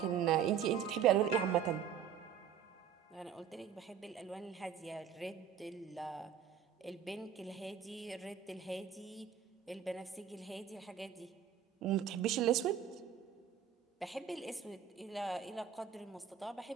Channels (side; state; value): left; quieter; 8.3 dB